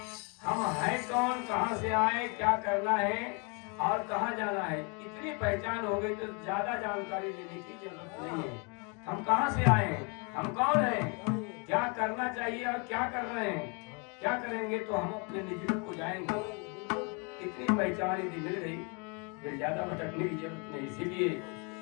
हम हैं कौन, कहां से आए, क्या करना है और कहां जाना है। इतनी पहचान हो गई तो ज्यादा जानकारी लेने की जरूरत नहीं है। हम कहां से आए हैं, हम कौन हैं, क्या करना चाहिए और क्या कर रहे हैं, क्या करेंगे तो हम अपने निज रूप को जाएंगे। इतनी पहचान यदि मिल गई फिर ज्यादा भटकने की जरूरत नहीं। इसीलिए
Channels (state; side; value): quieter; right; 33.9 dB